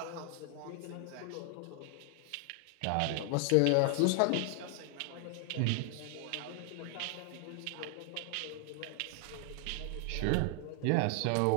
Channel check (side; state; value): both; different; correlation 0.00